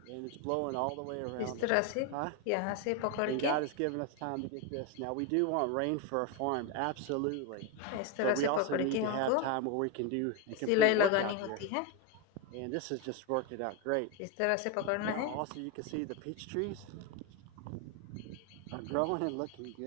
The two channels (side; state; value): both; different; correlation 0.02